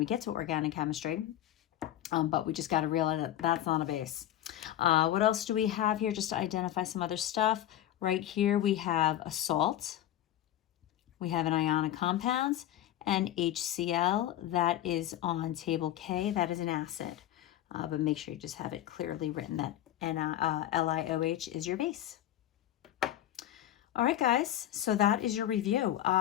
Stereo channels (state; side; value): quieter; right; 12.6 dB